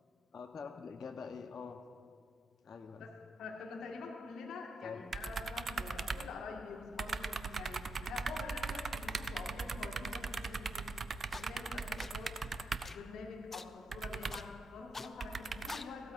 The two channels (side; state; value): both; normal; correlation 0.82